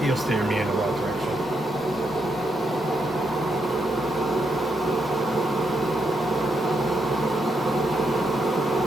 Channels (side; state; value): both; normal; correlation 0.80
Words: steer me in the right direction.